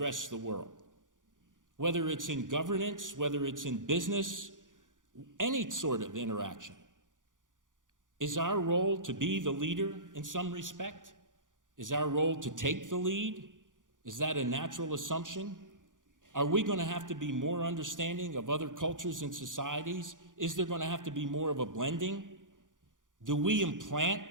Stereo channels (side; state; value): left; late; 0.88 ms